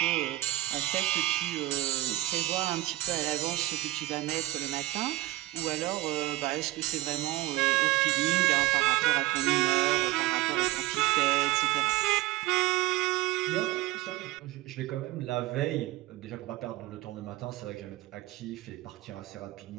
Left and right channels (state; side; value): quieter; left; 17.4 dB